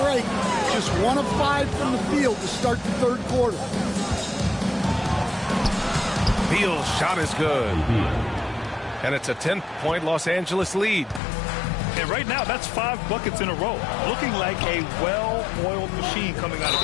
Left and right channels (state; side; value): drops out; right; at 11.2 s